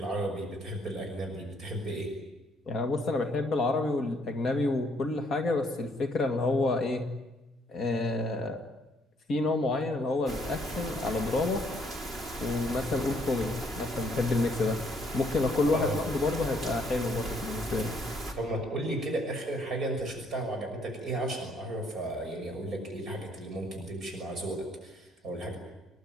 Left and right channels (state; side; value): normal; both; correlation 0.67